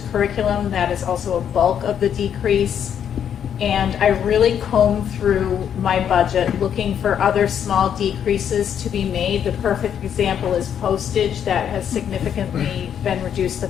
curriculum. That is also a bulk of the decrease. And I really combed through my budget looking for other small decreases to be made. The perfect example is postage that has significantly been reduced the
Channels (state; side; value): quieter; right; 8.8 dB